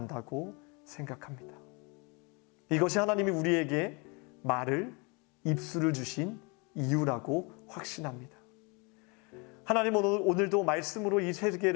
생각합니다. 이것이 하나님이 우리에게 말을, 입술을 주신 이유라고 확신합니다. 하나님은 오늘도 말씀으로 이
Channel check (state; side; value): quieter; right; 30.4 dB